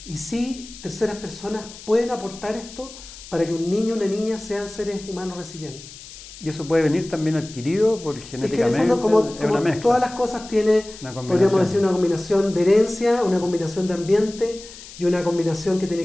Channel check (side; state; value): left; noise; hiss, 16 dB below the sound